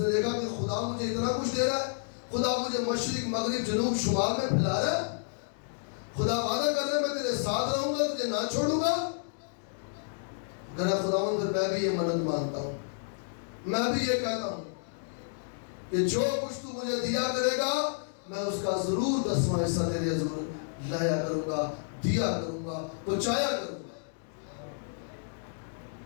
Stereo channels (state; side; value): silent; right; digital silence